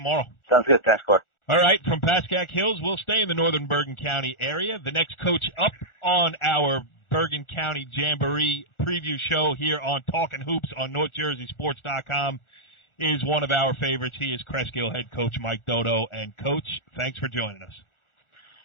Sounds good. Thanks, Clark. All right, from Pascack Hills, we'll stay in the northern Bergen County area. The next coach up on our Bergen County Jamboree preview show here on Talkin Hoops on NorthJerseySports.com is one of our favorites. He is Cresskill head coach Mike Doto. And, Coach, thanks for joining us.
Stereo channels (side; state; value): right; late; 1.4 ms